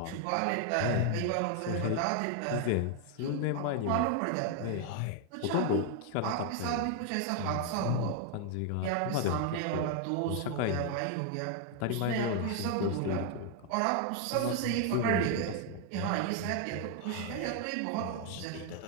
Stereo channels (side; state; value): both; different; correlation 0.00